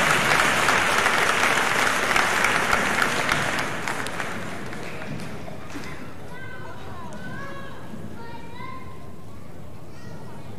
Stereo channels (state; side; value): identical; both; correlation 1.00